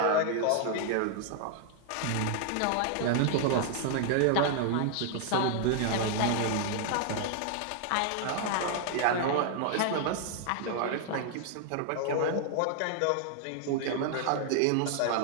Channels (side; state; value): both; different; correlation 0.00